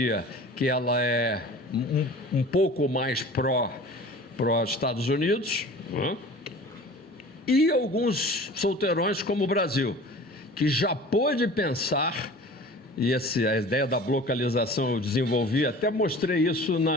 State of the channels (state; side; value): normal; both; correlation 0.42